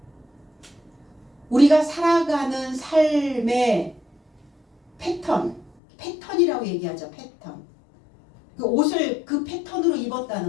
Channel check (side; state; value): right; drops out; at 5.7 s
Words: 우리가 살아가는 삶의 패턴이라고 얘기하죠. 패턴. 그 옷을 그 패턴으로